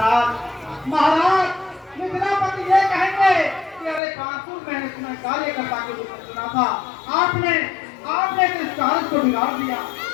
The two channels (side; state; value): right; drops out; at 4.0 s